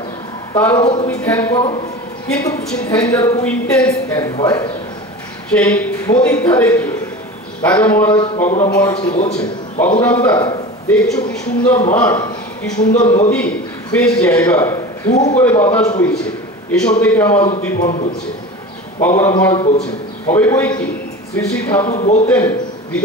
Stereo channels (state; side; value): normal; both; correlation 0.33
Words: তার উপর তুমি ধ্যান করো, কিন্তু সেই ধ্যান যার খুব ইন্টেন্স ধ্যান হয়। সেই নদীর ধারে গিয়ে রাজা মহারাজ বাবুরাম মহারাজকে বলছেন, বাবুরাম দা দেখছো কি সুন্দর মাঠ, কি সুন্দর নদী, বেশ জায়গা, হু করে বাতাস বইছে, এসব দেখে আমার উদ্দীপন হচ্ছে। বাবুরাম মহারাজ বলছেন, হবে বই কি, শ্রী শ্রী ঠাকুর বলতেন